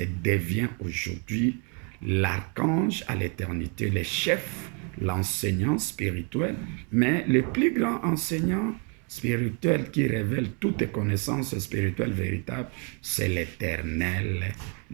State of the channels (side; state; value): left; quieter; 35.3 dB